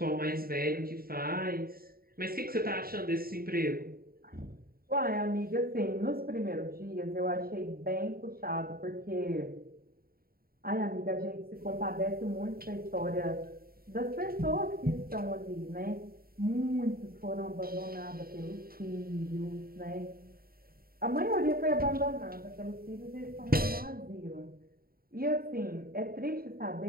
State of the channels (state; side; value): late; left; 0.43 ms